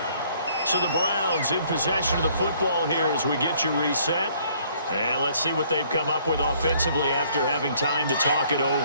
So the Browns in possession of the football here as we get you reset. And let's see what they've come up with offensively after having time to talk it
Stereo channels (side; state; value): both; inverted; correlation -0.62